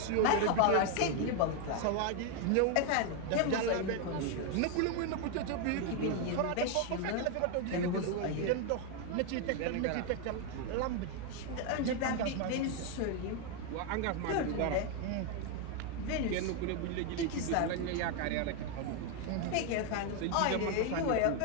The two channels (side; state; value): both; different; correlation 0.01